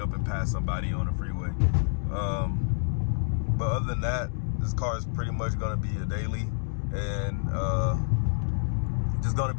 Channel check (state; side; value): silent; right; digital silence